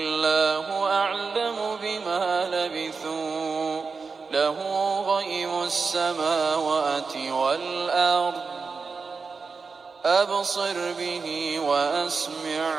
أعلم بما لبثوا له غيب السماوات والأرض أبصر به وأسمع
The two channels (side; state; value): left; quieter; 4.8 dB